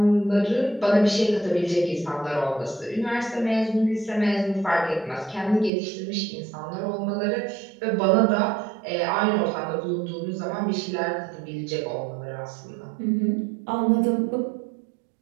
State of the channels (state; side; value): drops out; left; at 5.7 s